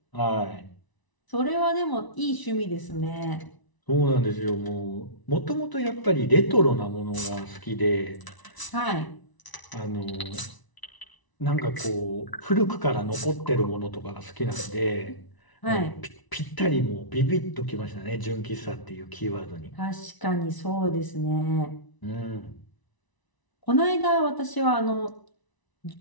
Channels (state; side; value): late; right; 1.0 ms